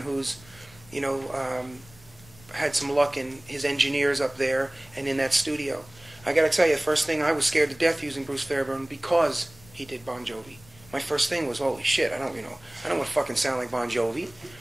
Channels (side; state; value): left; noise; rumble, 24 dB below the sound